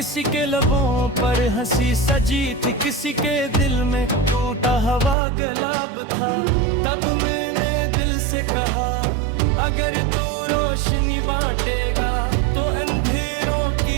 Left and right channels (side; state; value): left; drops out; at 5.2 s